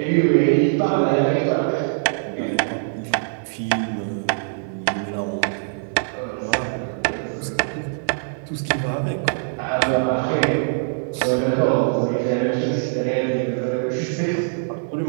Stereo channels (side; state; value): left; silent; digital silence